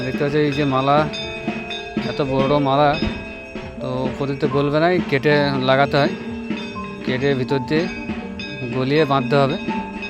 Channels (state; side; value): identical; both; correlation 1.00